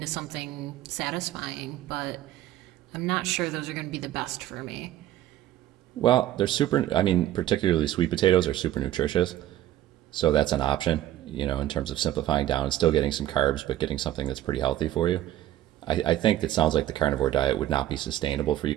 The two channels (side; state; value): left; quieter; 13.3 dB